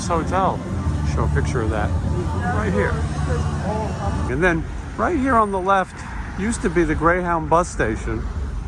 hotel. Show a picture of that right here. And then right here on the left used to be the Greyhound bus station.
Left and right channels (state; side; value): identical; both; correlation 1.00